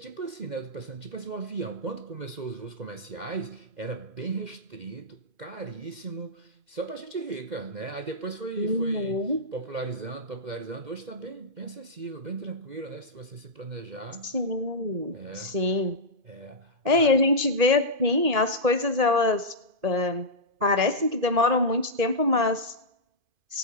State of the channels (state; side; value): late; left; 2.5 ms